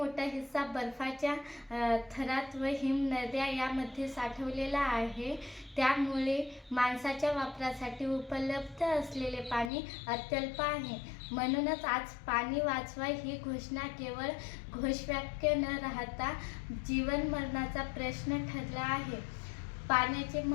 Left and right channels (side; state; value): right; drops out; at 9.7 s